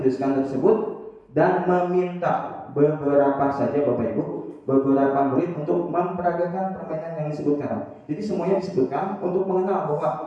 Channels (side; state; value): both; identical; correlation 1.00